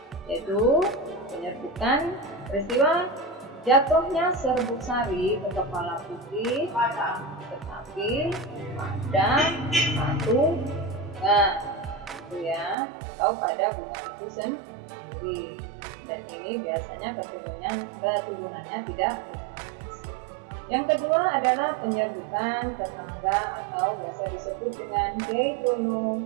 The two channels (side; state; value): left; drops out; at 12.8 s